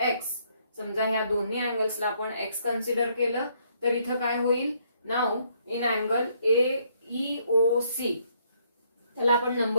X. समजा ह्या दोन्ही अँगल्सला आपण X कन्सिडर केलं तर इथं काय होईल. नाउ इन अँगल EOC त्याला आपण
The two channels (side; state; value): both; inverted; correlation -0.69